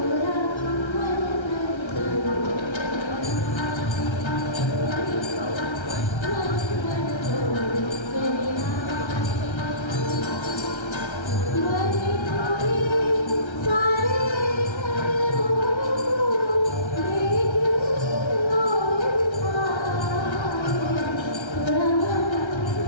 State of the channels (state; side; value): late; right; 1.3 ms